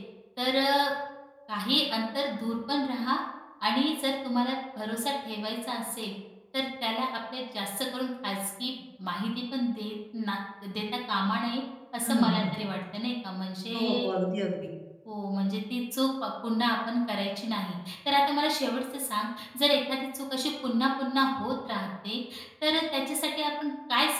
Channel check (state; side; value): identical; both; correlation 1.00